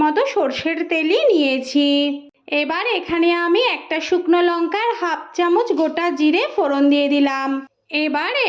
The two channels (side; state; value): both; identical; correlation 1.00